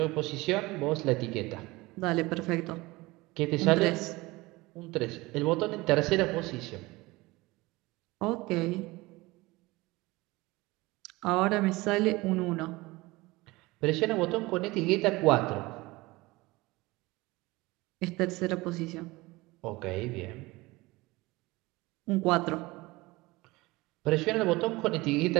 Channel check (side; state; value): left; quieter; 21.4 dB